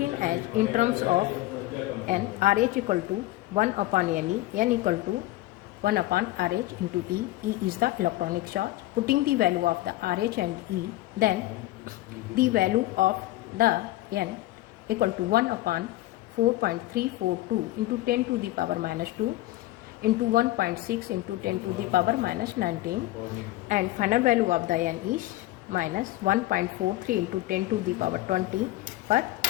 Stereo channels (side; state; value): right; quieter; 17.0 dB